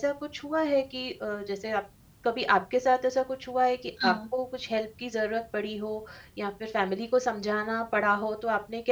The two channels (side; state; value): both; identical; correlation 1.00